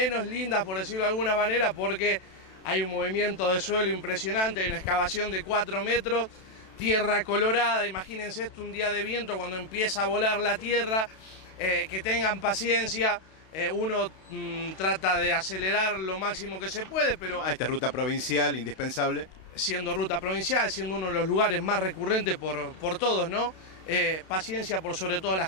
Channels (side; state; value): right; late; 32 ms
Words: lindas, por decirlo de alguna manera, porque hay un movimiento de suelo impresionante, hay una excavación de 4 metros, tierra colorada. Imagínense esto un día de viento cuando empieza a volar la tierra, que tengan paciencia. Uno trata de acelerar lo máximo que se puede, pero... Esta ruta provincial, indispensable. Siendo ruta provincial, siendo uno de los lugares más recurrentes por todos, ¿no? Paciencia por sobre todas las